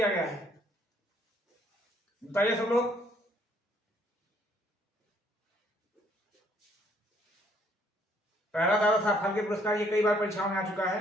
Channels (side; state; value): both; normal; correlation 0.65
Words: गया है, बताइए सब लोग। पहला दादा साहब फाल्के पुरस्कार ये कई बार परीक्षाओं में आ चुका